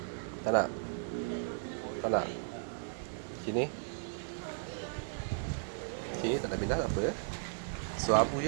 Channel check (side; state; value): left; silent; digital silence